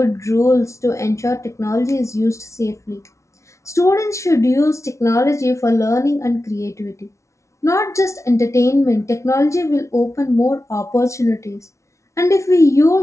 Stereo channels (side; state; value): right; late; 0.14 ms